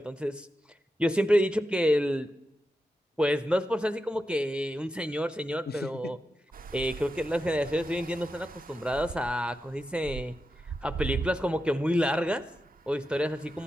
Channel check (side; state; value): both; normal; correlation 0.89